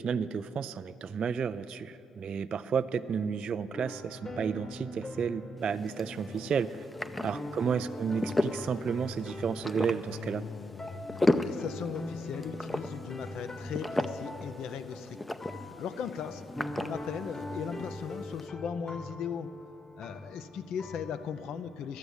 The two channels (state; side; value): normal; both; correlation 0.79